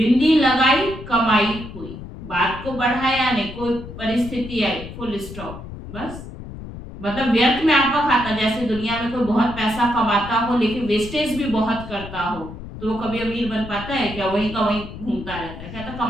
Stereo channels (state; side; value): noise; left; rumble, 12 dB below the sound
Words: लगाई, कमाई हुई, बात को बढ़ाया नहीं, कोई परिस्थिति आई, फुल स्टॉप, बस। मतलब व्यर्थ में आपका खाता। जैसे दुनिया में कोई बहुत पैसा कमाता हो लेकिन वेस्टेज भी बहुत करता हो, तो वो कभी अमीर बन पाता है क्या? वहीं का वहीं घूमता रहता है। कहता